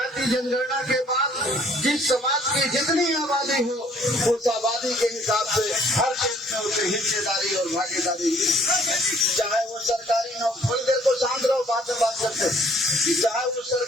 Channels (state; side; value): normal; both; correlation 0.60